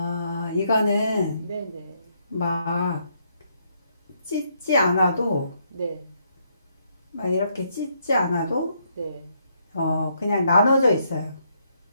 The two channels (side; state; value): both; inverted; correlation -0.74